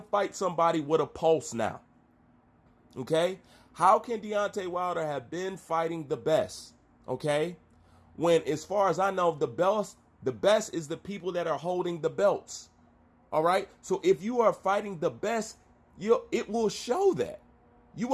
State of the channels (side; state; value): both; identical; correlation 1.00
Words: fight somebody with a pulse now. Okay? How can Deontay Wilder have been fighting the best? Okay? When, as far as I know, the best is the people that are holding the belts. All right. So if you are fighting the best, it will show that. You